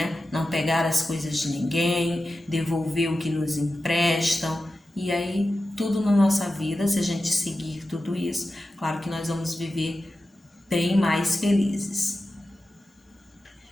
Não pegar as coisas de ninguém, devolver o que nos emprestam. E aí, tudo na nossa vida, se a gente seguir tudo isso, claro que nós vamos viver bem mais felizes.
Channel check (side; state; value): both; normal; correlation 0.93